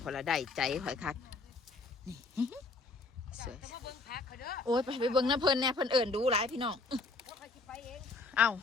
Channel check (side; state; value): right; quieter; 3.6 dB